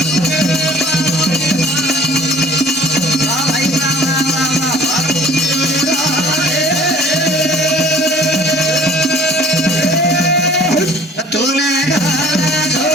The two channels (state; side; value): normal; both; correlation 0.50